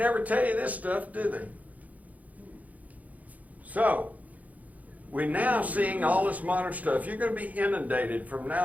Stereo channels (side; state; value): left; late; 0.075 ms